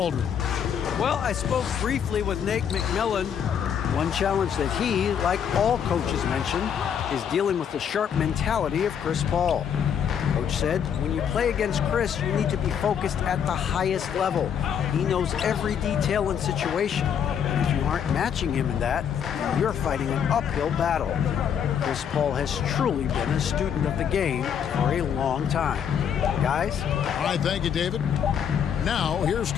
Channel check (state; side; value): quieter; right; 8.1 dB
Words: Well, I spoke briefly with Nate McMillan. One challenge that he, like all coaches mentioned, is dealing with the sharp mentality of Chris Paul. Coach said, when you play against Chris, you need to be focused at the highest level. He knows every detail and situation. And if you aren't matching him in that, you're fighting an uphill battle. Chris Paul has truly been a student of the game for a long time. Guys? All right, thank you, David. Now, here's